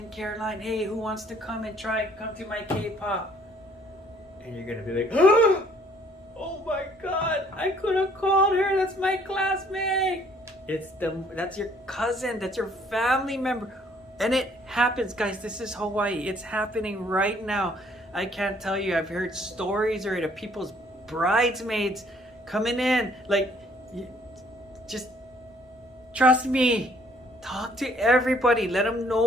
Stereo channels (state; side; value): normal; both; correlation 0.61